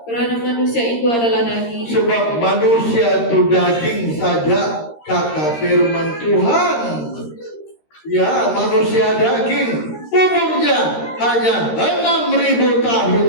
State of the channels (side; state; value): right; late; 13 ms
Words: karena manusia itu adalah daging. Sebab manusia itu daging saja, kata firman Tuhan. Ya, manusia daging. Umurnya hanya 6.000 tahun